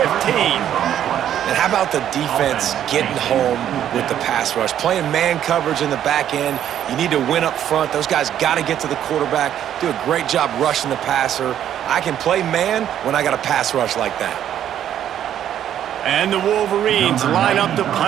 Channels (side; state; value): left; quieter; 10.5 dB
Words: And how about the defense getting home with the pass rush? Playing man coverage in the back end. You need to win up front. Those guys got to get to the quarterback, do a great job rushing the passer. I can play man when I got a pass rush like that. And the Wolverines line up to